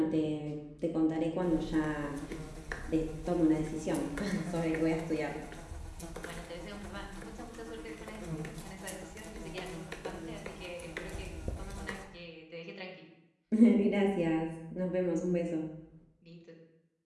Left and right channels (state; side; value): identical; both; correlation 1.00